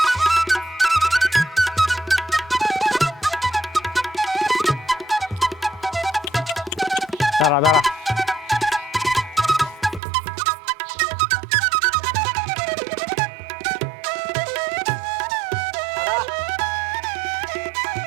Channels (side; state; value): left; drops out; at 10.0 s